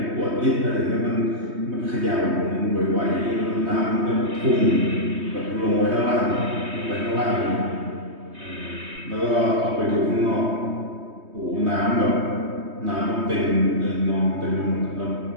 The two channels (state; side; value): late; left; 3.2 ms